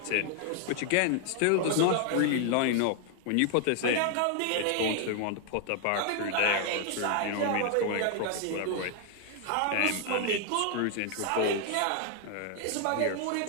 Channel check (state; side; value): different; both; correlation 0.00